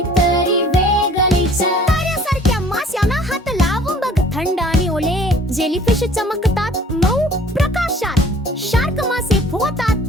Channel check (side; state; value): both; normal; correlation 0.52